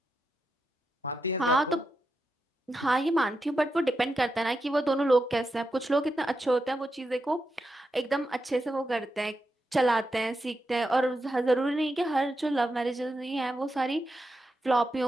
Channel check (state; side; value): normal; both; correlation 0.87